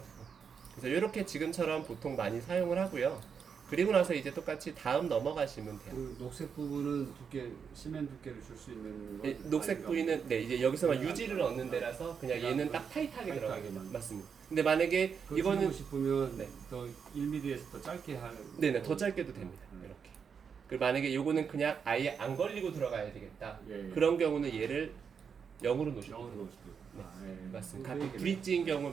그래서 이렇게 지금처럼 보통 많이 사용을 하고요. 그리고 나서 이제 똑같이 다음 넘어가시면 돼요. 그 녹색 부분은 두께, 시멘 두께를 줄 수 있는 거. 녹색 부위는 네 이제 여기서만 네, 유지를 얻는 데라서 그냥 그냥 얘는 딱 타이트하게 들어가요. 타이트하게만. 맞습니다. 근데 만약에 그거 이거는 줄이고 싶으면 네. 더 1mm에서 더 짧게 하는. 네네 더 짧게도 됩니다. 이렇게. 그리고 만약에 요거는 그냥 아예 안 걸리고 들어가야 되겠다. 예, 예. 그런 경우는 얘를 0으로 놓으시면 영어로 돼요. 넣을 수도 있고. 네. 아, 예. 맞습니다. 그거 가끔 얘기를- 브릿지인 경우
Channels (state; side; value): quieter; left; 6.6 dB